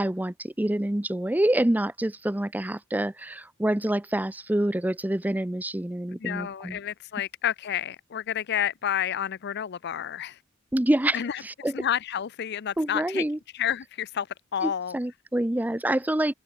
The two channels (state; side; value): normal; both; correlation 0.67